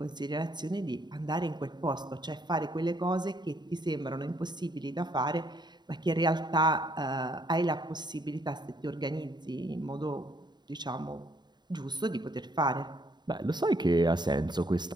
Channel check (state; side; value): late; left; 0.21 ms